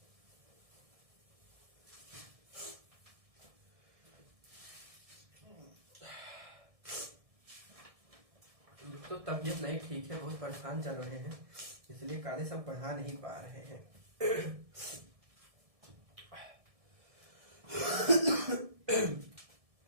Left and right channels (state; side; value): late; left; 1.7 ms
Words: तो तबीयत नहीं ठीक है, बहुत परेशान चल रहे हैं, इसलिए काले सब पढ़ा नहीं पा रहे हैं।